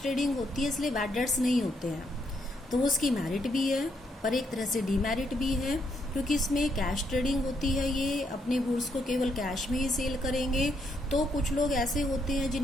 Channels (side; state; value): both; normal; correlation 0.76